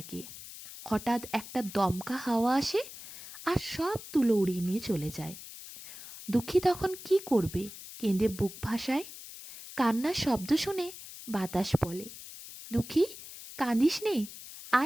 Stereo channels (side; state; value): left; noise; hiss, 14 dB below the sound